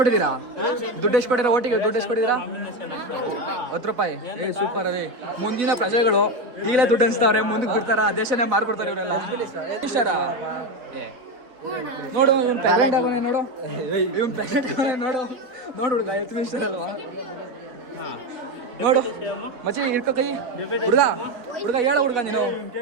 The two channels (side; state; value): left; late; 3.7 ms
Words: ದುಡ್ಡು ಎಷ್ಟು ಕೊಟ್ಟಿರಾ? ಒಟ್ಟಿಗೆ ದುಡ್ಡು ಎಷ್ಟು ಕೊಟ್ಟಿದ್ದೀರಾ? 10 ರೂಪಾಯಿ. ಸೂಪರ್ ಅದೇ. ಮುಂದಿನ ಪ್ರಜೆಗಳು ಈಗಲೇ ದುಡ್ಡು ಅನ್ಸ್ತಾವ್ರೆ, ಮುಂದಕ್ಕೆ ಬಿಡ್ತಾರ, ದೇಶನೇ ಮಾರ್ಬಿಡ್ತಾರೆ ಇವರೆಲ್ಲ. ಇಷ್ಟಾರಾ? ನೋಡು ಇವನ್ ಪ್ರೆಗ್ನೆಂಟ್ ಆಗೋನೆ, ನೋಡು ಇವನ್ ಪ್ರೆಗ್ನೆಂಟ್ ಆಗೋನೆ, ನೋಡು ಹುಡುಗ ಹೆಲ್ತ್ ಮಿನಿಸ್ಟರ್ ಅಲ್ವಾ? ನೋಡು ಮಚ್ಚಿ ಇರ್ಕೋ ಕೈ. ಹುಡುಗ ಹೇಳ ಹುಡುಗ, ನೀನು